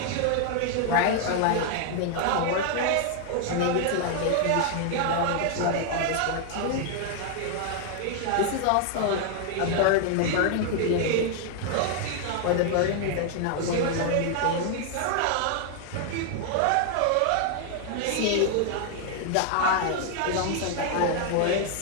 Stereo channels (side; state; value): both; different; correlation 0.00